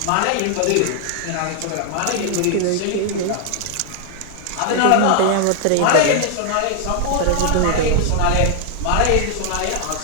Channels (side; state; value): both; different; correlation 0.00